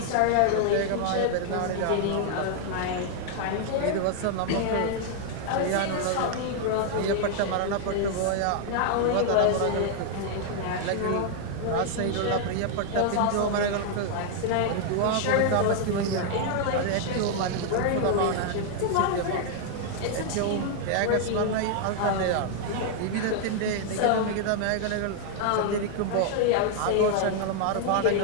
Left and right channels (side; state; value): both; different; correlation 0.00